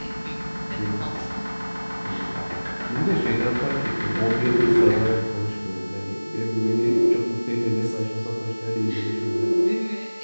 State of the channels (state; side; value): inverted; both; correlation -1.00